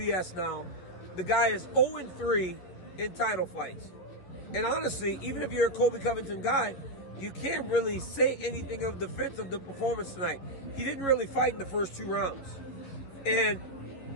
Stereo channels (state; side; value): late; right; 11 ms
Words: now? The guy is 0-3 in title fights." And honestly, even if you're a Colby Covington guy, you can't really say anything of defense of the performance tonight. He didn't really fight in the first 2 rounds. And